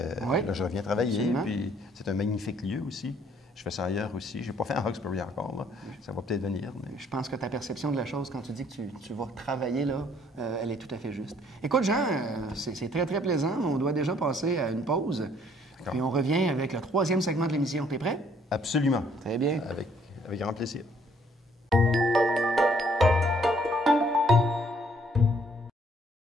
Là, je reviens travailler, puis c'est un magnifique lieu aussi. Je fais ça ailleurs aussi. Je n'ai pas fait en Hawkesbury encore, là. Ça va peut-être venir. Mais... Je pense que ta perception de la chose, quand tu dis que tu vas travailler là, elle est tout à fait juste. Écoute, Jean, c'est très, très plaisant. On doit déjà passer à une pause. Puis on revient avec le 3e segment de l'émission. T'es prêt? Absolument. Très bien. Avec grand plaisir.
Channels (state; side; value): normal; both; correlation 0.63